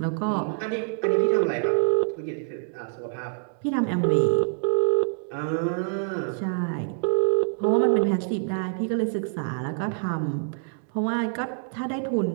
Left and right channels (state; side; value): silent; left; 61 dB below the other